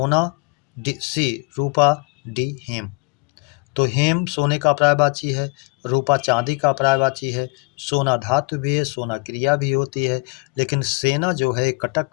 सी रूपा, डी हेम। तो हेम सोने का पर्यायवाची है, रूपा चांदी का पर्यायवाची है, सोना धातु भी है, सोना क्रिया भी होती है, लेकिन सेना जो है कटक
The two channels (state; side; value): quieter; right; 30.0 dB